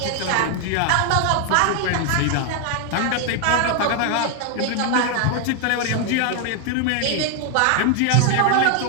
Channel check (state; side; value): different; both; correlation 0.00